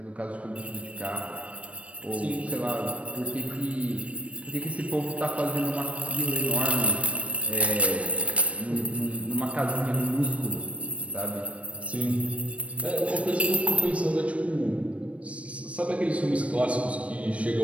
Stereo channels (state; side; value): late; left; 0.063 ms